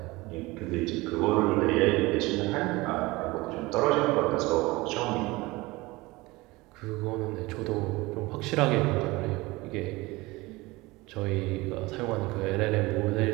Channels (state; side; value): quieter; left; 21.7 dB